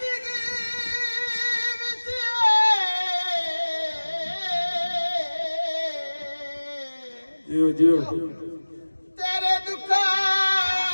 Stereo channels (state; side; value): inverted; both; correlation -1.00